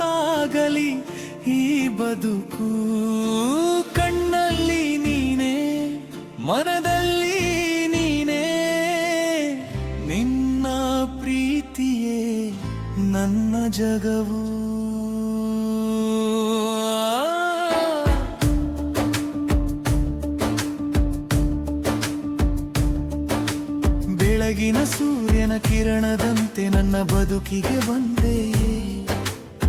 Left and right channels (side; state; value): both; identical; correlation 1.00